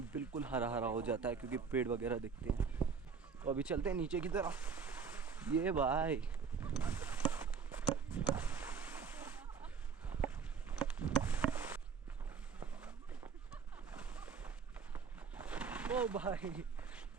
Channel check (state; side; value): quieter; left; 6.0 dB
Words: बिल्कुल हरा हरा हो जाता है क्योंकि पेड़ वगैरह दिखते हैं। तो अभी चलते हैं नीचे की तरफ। ये भाई ओ भाई